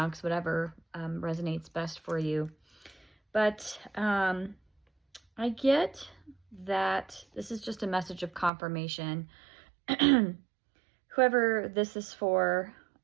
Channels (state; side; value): drops out; left; at 8.5 s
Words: whatever resonates best for you. But I get that this is just a message of confirmation. Whoever this is for,